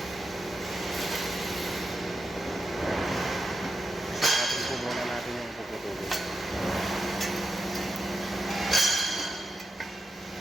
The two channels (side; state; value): both; normal; correlation 0.88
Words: Natin po muna natin yung puputulin.